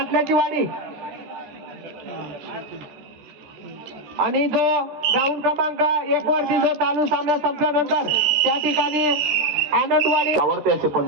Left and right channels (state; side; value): late; left; 13 ms